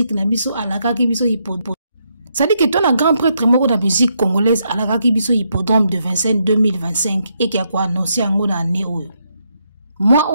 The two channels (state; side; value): inverted; both; correlation -0.78